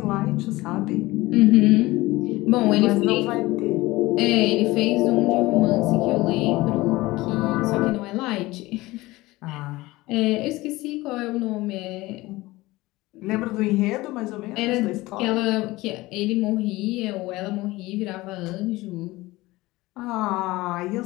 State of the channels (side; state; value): right; quieter; 19.6 dB